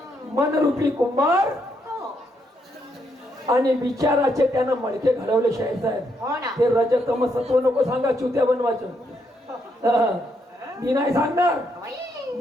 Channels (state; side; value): normal; both; correlation 0.77